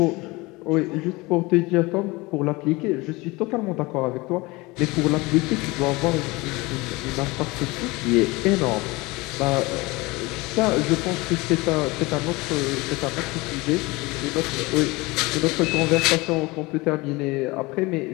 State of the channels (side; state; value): right; quieter; 23.1 dB